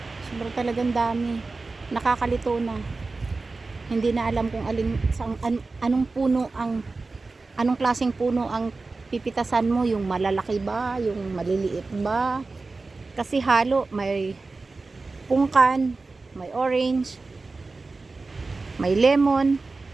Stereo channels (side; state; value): left; quieter; 3.7 dB